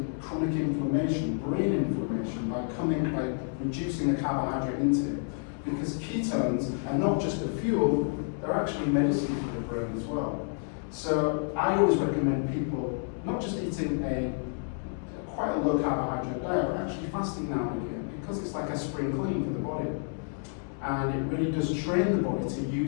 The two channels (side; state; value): right; silent; 58 dB below the other